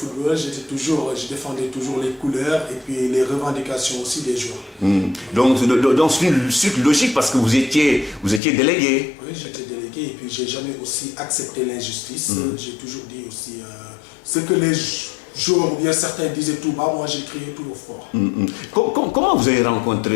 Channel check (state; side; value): drops out; right; at 8.4 s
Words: je défendais toujours les couleurs et puis les revendications aussi des joueurs. Donc c'est une suite logique parce que vous étiez délégué. Oui, j'étais délégué et puis j'ai jamais aussi accepté l'injustice. J'ai toujours dit aussi ce que les joueurs ou bien certains disaient tout bas, moi j'ai crié tout au fort. Comment vous avez